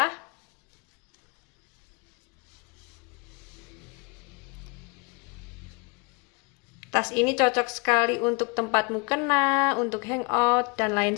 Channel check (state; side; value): quieter; right; 29.9 dB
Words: Tas ini cocok sekali untuk tempat mukena, untuk hangout, dan lain